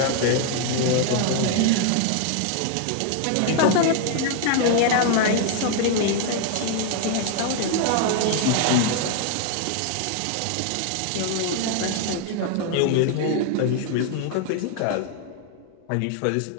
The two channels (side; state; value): both; different; correlation 0.00